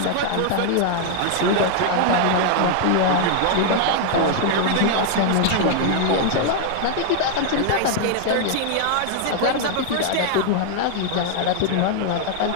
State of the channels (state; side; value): different; both; correlation 0.00